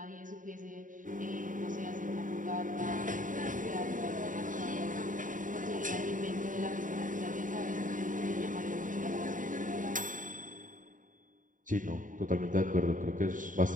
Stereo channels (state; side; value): late; left; 0.38 ms